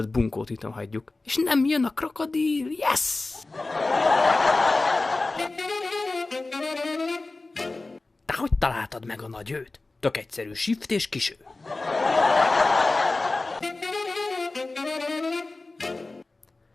bunkót itt hagyjuk. És nem jön a krokodil, yes! Te hogy találtad meg a nagy őt? Tök egyszerű, shift és kiső.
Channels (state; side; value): quieter; right; 3.3 dB